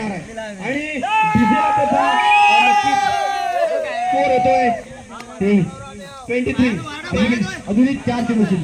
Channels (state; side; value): identical; both; correlation 1.00